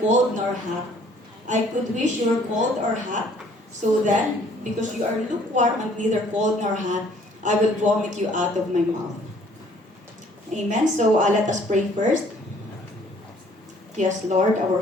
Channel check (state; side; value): normal; both; correlation 0.59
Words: nor hot. I could wish you were cold or hot. So then, because you are lukewarm and neither cold nor hot, I will vomit you out of my mouth. Amen. So let us pray first. Yes, Lord, our